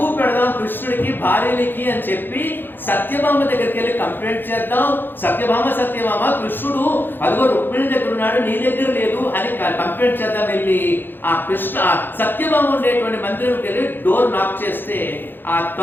పెడదాం కృష్ణుడికి, భార్యలకి అని చెప్పి సత్యభామ దగ్గరికి వెళ్ళి కంప్లైంట్ చేద్దాం. సత్యభామ కృష్ణుడు అదిగో రుక్మిణి దగ్గర ఉన్నాడు, నీ దగ్గర లేదు అని కంప్లైంట్ చేద్దాం. వెళ్ళి ఆ సత్యభామ ఉండేటువంటి మందిరంకి వెళ్ళి డోర్ నాక్ చేస్తే ఆ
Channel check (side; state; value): right; late; 0.097 ms